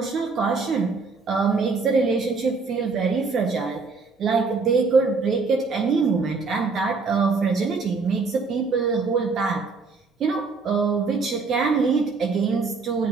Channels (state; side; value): quieter; left; 4.4 dB